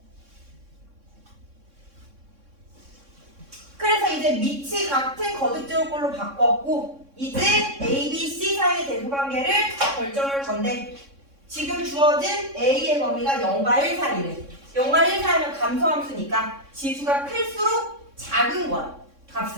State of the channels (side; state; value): left; late; 3.6 ms